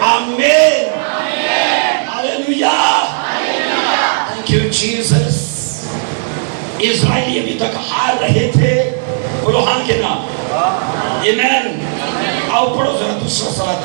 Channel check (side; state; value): left; silent; digital silence